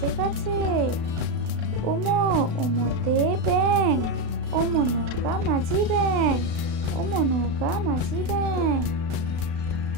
গাছে। উমো, উমোতে ব্যাঙ, ওমো নৌকা মাঝি ব্যাঙ, ওমো নৌকা মাঝি ব্যাঙ।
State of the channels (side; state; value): left; late; 36 ms